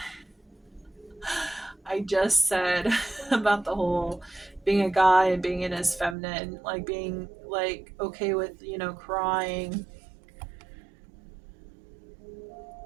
I just said about the whole being a guy and being in his feminine, like being like okay with, you know, crying.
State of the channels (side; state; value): left; drops out; at 6.2 s